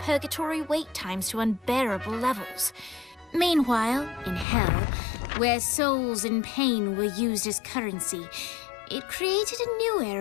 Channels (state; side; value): drops out; right; at 4.5 s